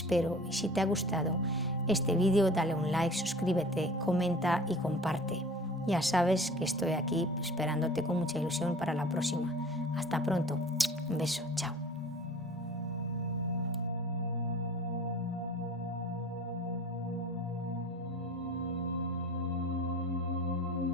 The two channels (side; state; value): both; normal; correlation 0.43